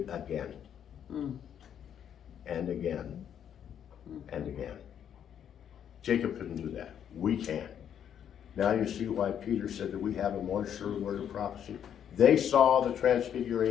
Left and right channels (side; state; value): right; quieter; 9.1 dB